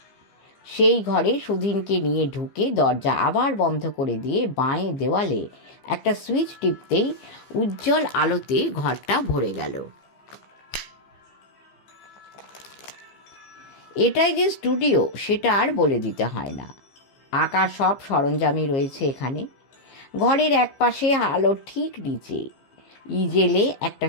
সেই ঘরে সুধীনকে নিয়ে ঢুকে দরজা আবার বন্ধ করে দিয়ে বাঁয়ে দেওয়ালে একটা সুইচ টিপতেই উজ্জ্বল আলোতে ঘরটা ভরে গেল। এটাই যে স্টুডিও সেটা আর বলে দিতে হয় না। আঁকার সব সরঞ্জামই রয়েছে এখানে। ঘরের একপাশে আলোর ঠিক নিচে ইজেলে একটা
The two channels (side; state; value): right; late; 15 ms